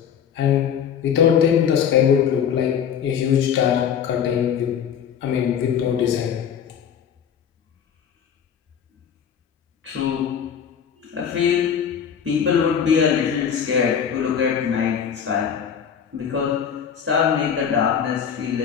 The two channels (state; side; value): quieter; right; 8.0 dB